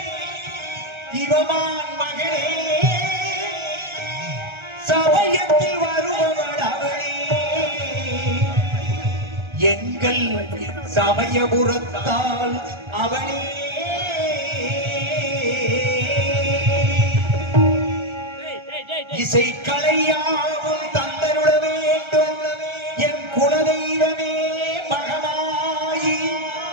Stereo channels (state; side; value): late; left; 1.3 ms